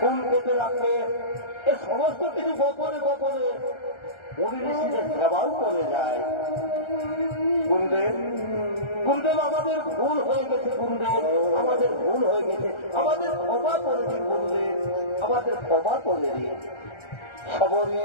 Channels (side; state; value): right; late; 1.3 ms